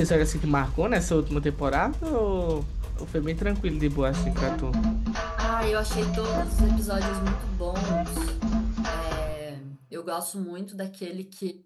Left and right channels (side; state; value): both; identical; correlation 1.00